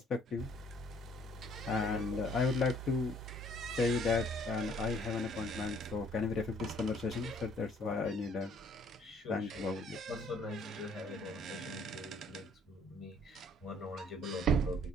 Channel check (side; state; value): both; normal; correlation 0.61